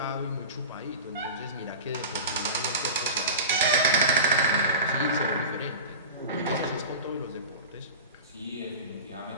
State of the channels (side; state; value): both; inverted; correlation -0.31